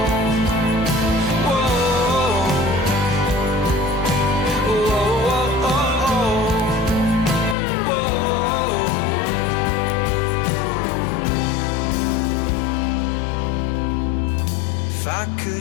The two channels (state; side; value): drops out; right; at 7.6 s